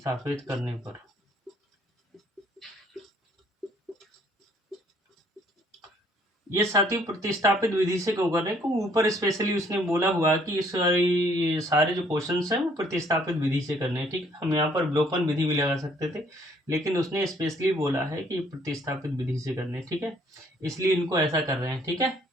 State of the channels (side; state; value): both; normal; correlation 0.63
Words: करने पर ये साथियों प्रतिस्थापित विधि से क्यों कर रहे हैं, क्योंकि ऊपर स्पेशली उसने बोला हुआ कि इस सारे जो क्वेश्चंस हैं वो प्रतिस्थापित विधि से करने हैं। ठीक है, हम यहाँ पर विलोपन विधि भी लगा सकते थे, लेकिन उसने स्पेशली बोला है कि प्रतिस्थापित विधि से करने। ठीक है, इसलिए इनको ऐसा कर रहे हैं। ठीक है,